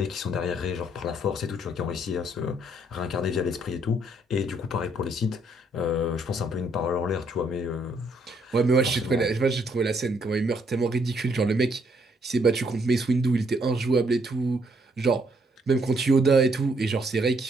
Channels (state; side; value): normal; both; correlation 0.70